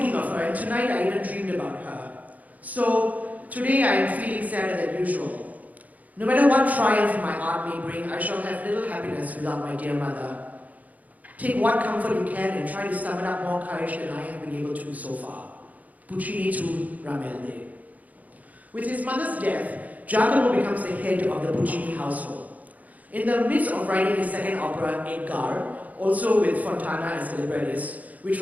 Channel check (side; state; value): left; late; 0.076 ms